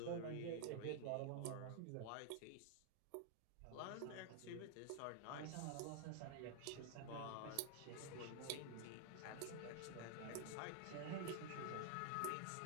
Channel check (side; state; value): both; different; correlation 0.00